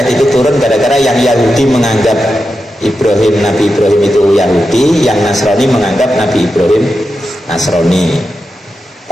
itu turun, gara-gara yang Yahudi menganggap Ibrahim, Nabi Ibrahim itu Yahudi, yang Nasrani menganggap Nabi Ibrahim Nasrani.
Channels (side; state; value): both; normal; correlation 0.89